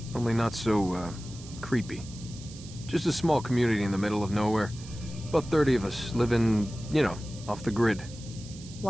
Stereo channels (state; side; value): noise; right; hiss, 17 dB below the sound